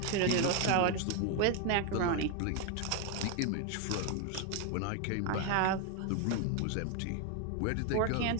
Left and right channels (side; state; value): both; different; correlation 0.01